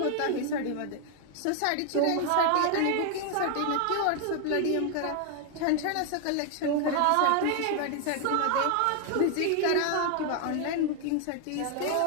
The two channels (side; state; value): both; different; correlation 0.00